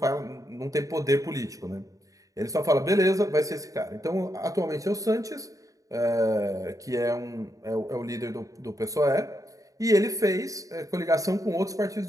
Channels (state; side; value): late; left; 0.16 ms